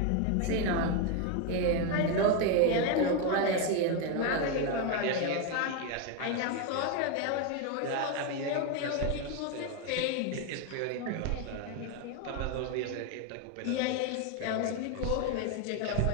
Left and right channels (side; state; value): both; different; correlation 0.02